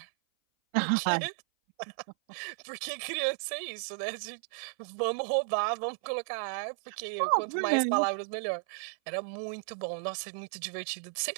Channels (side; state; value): left; silent; 55 dB below the other